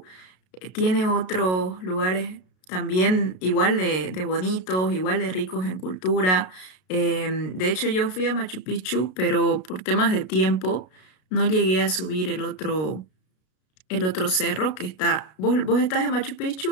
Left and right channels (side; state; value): right; late; 33 ms